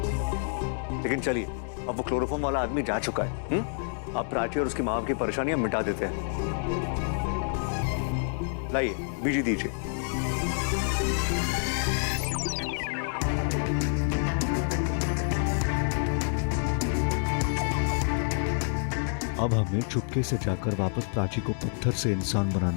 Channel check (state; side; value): silent; right; digital silence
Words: लेकिन चलिए, अब वो क्लोरोफॉर्म वाला आदमी जा चुका है। अब प्राची और उसकी मां की परेशानियां मिटा देते हैं। लाइए, बीजी दीजिए। अब हमें चुपके से जाकर वापस प्राची को पत्थर से इंसान